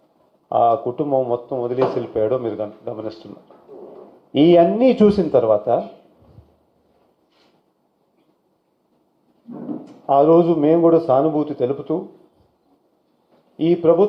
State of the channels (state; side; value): identical; both; correlation 1.00